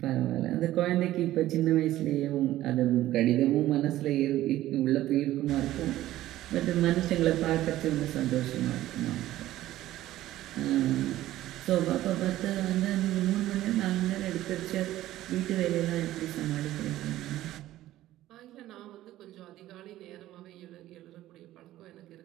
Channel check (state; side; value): quieter; left; 14.6 dB